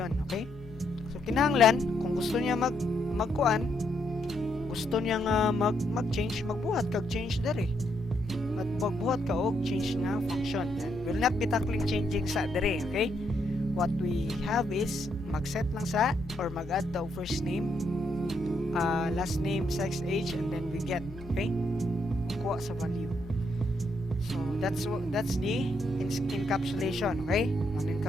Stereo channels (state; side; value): normal; both; correlation 0.76